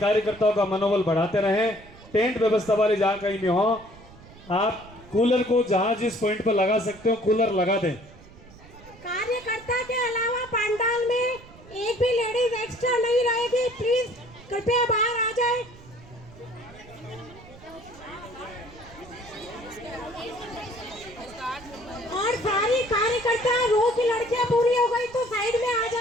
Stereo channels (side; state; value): right; noise; rumble, 21 dB below the sound